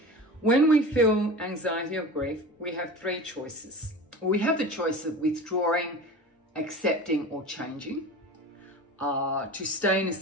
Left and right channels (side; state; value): both; normal; correlation 0.34